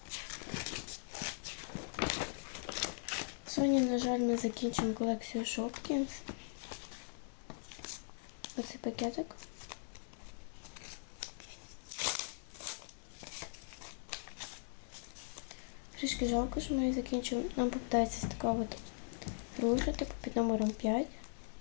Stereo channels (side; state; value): right; silent; digital silence